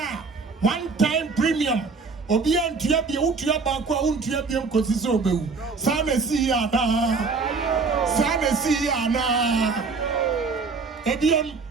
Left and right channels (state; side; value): quieter; left; 4.5 dB